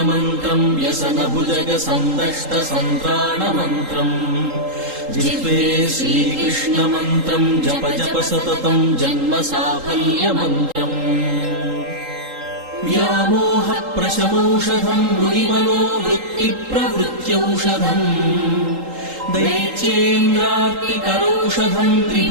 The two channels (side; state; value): left; late; 3.8 ms